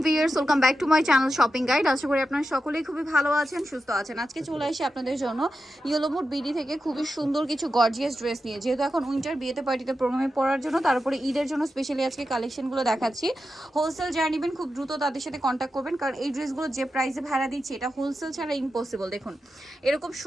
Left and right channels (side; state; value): both; normal; correlation 0.90